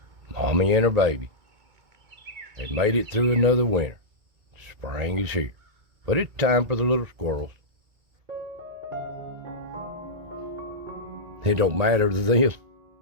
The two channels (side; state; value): left; late; 1.9 ms